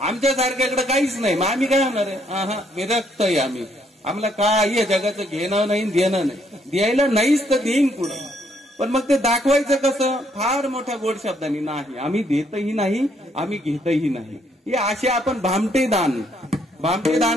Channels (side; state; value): both; normal; correlation 0.71